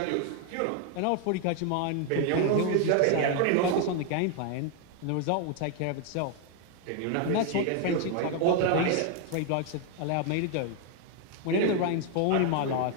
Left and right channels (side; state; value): both; different; correlation 0.01